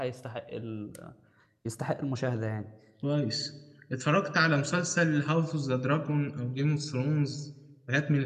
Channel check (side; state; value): both; identical; correlation 1.00